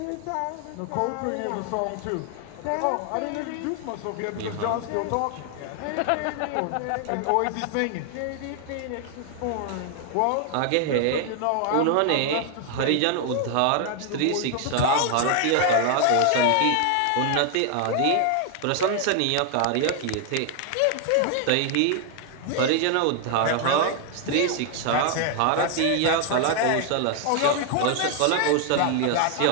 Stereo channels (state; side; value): different; both; correlation 0.00